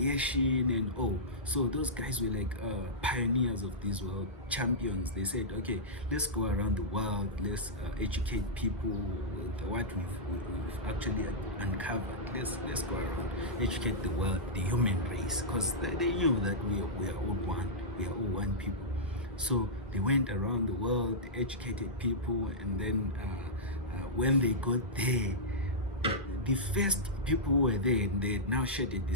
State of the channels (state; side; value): normal; both; correlation -0.12